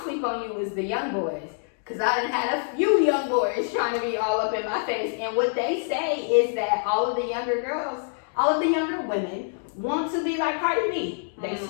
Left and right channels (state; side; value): silent; right; 61 dB below the other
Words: sleep on you is the young boys. Because I done had a few young boys trying to be all up in my face. And what they say is that all of the younger girls, all of the younger women want to be like Cardi B. They